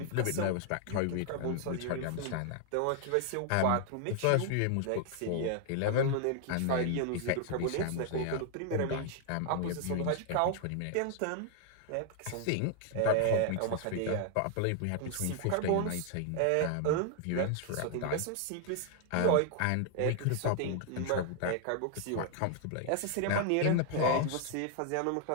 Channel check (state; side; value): different; both; correlation 0.00